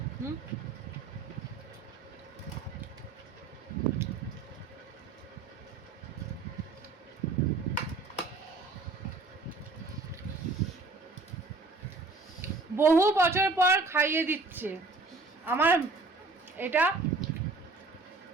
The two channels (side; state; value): left; quieter; 3.6 dB